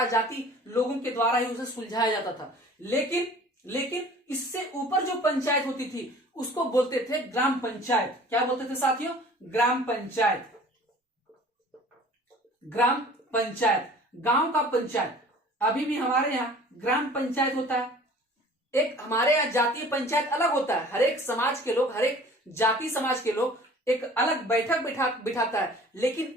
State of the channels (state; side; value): normal; both; correlation 0.47